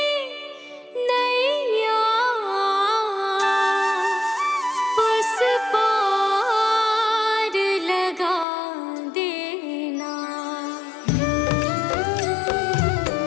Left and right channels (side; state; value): right; drops out; at 8.5 s